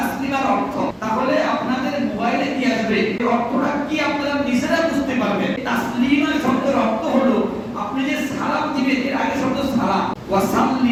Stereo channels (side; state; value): both; identical; correlation 1.00